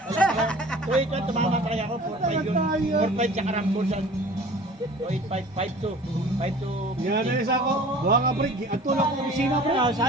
Wait, tumama talaga ako. 4-5 yun. 4-5 tsaka rambusan. 8-5, 5-2. Yan na isa ako. Buha nga pre, ang tulak ko opisina pre.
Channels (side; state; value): both; normal; correlation 0.45